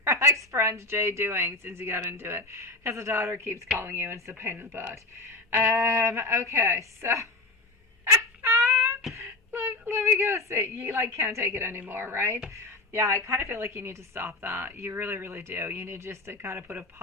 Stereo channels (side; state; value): right; quieter; 3.1 dB